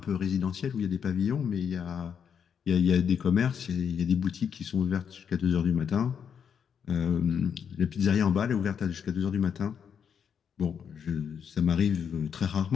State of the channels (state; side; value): quieter; right; 7.4 dB